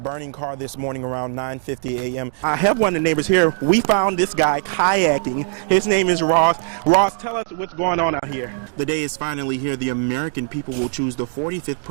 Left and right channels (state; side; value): silent; left; digital silence